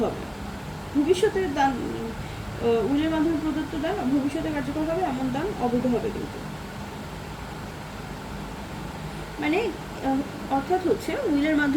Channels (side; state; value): both; identical; correlation 1.00